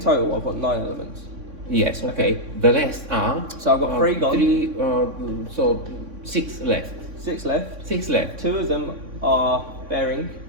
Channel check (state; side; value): late; left; 3.6 ms